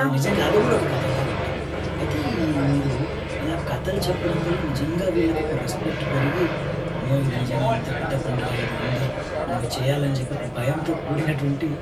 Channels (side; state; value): both; identical; correlation 1.00